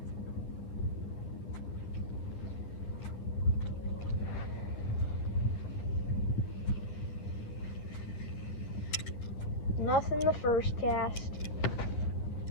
Nothing the first cast.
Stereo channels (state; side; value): late; right; 10 ms